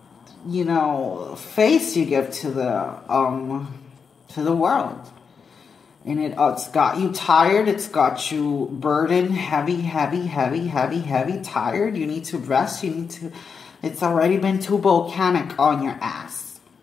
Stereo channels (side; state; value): right; quieter; 6.0 dB